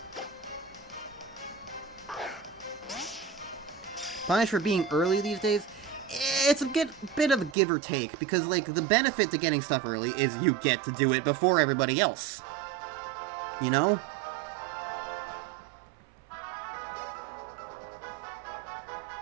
punished for being early these days, it's a bit of a give or take, because, like, the benefit to getting stuff early is you get to do it before everybody else. You know?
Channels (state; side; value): drops out; left; at 7.6 s